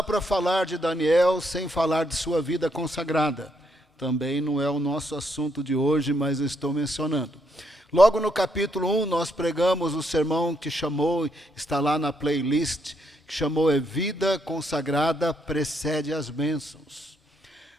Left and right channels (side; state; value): both; normal; correlation 0.76